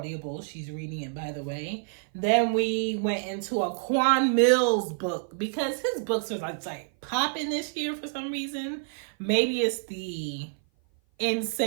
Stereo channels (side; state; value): left; silent; 56 dB below the other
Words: She's reading it, by the way. Then we went into a Quan Mills book because his books are like popping this year for some reason. Maybe it's the